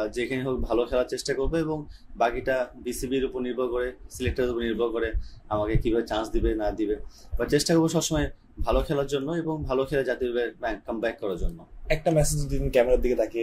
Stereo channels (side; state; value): both; identical; correlation 1.00